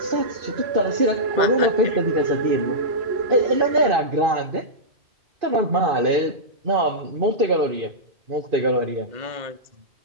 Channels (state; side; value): late; left; 2.5 ms